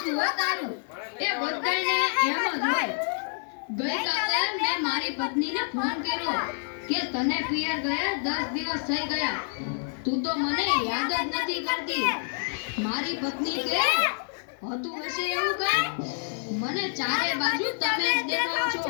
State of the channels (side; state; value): right; silent; 60 dB below the other